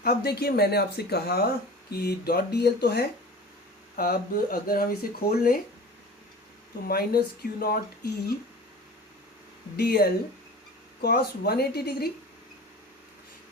अब देखिए, मैंने आपसे कहा कि डॉट डी एल तो है, अब अगर हम इसे खोल लें तो minus Q not E D L cos 180 degree,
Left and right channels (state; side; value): normal; both; correlation 0.38